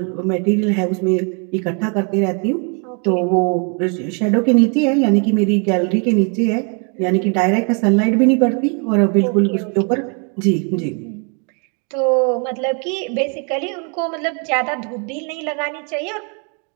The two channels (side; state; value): left; quieter; 37.8 dB